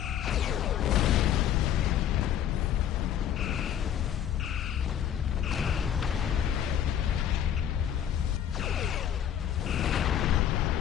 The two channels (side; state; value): right; quieter; 9.9 dB